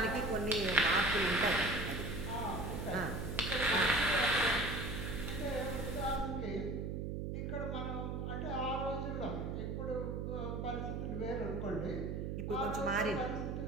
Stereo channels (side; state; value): right; noise; hum, 3 dB below the sound